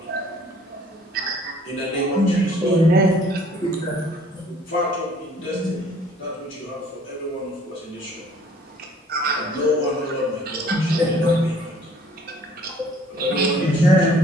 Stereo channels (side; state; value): both; normal; correlation 0.56